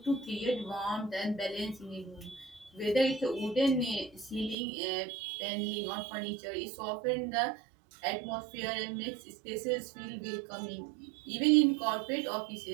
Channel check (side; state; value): left; drops out; at 4.5 s